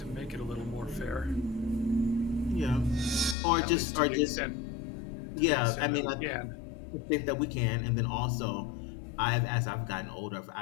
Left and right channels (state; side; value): drops out; right; at 3.4 s